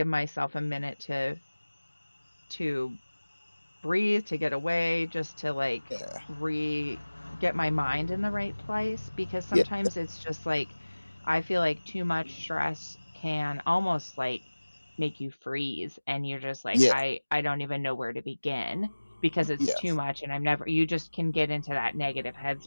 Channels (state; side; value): inverted; both; correlation -1.00